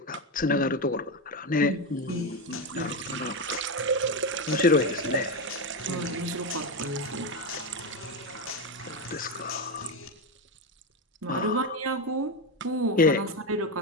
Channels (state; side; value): normal; both; correlation 0.12